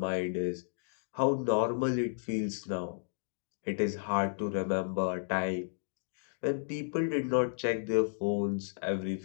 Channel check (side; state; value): right; silent; digital silence